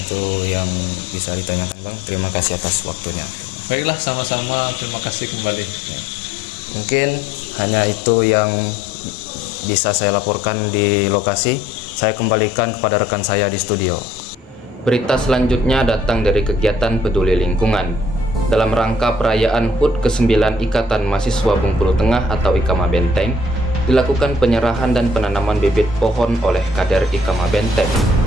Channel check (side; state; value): both; normal; correlation 0.60